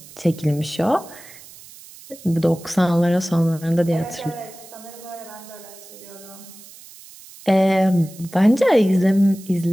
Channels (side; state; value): right; noise; hiss, 20 dB below the sound